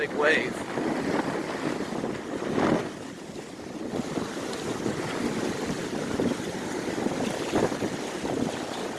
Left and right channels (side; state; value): both; identical; correlation 1.00